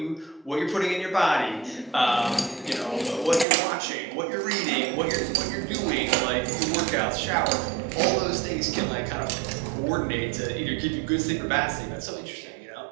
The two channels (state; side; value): drops out; left; at 3.5 s